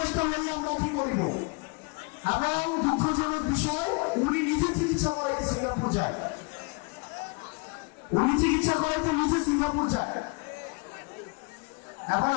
নিয়ে আমরা কি করব? এবং দুঃখজনক বিষয়, উনি নিজে চিকিৎসা করাইতে সিঙ্গাপুর যায়। উনি চিকিৎসা করাইতে নিজে সিঙ্গাপুর যায়। এখন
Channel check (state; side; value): quieter; right; 31.8 dB